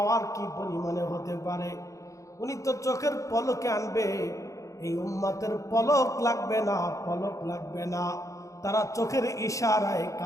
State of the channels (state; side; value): late; right; 0.15 ms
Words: কি পরিমাণে হতে পারে। উনি তো চোখের পলকে আনবে, এই উম্মতের পলক লাগবে না, পলক লাগবে না, তারা চোখের ইশারায়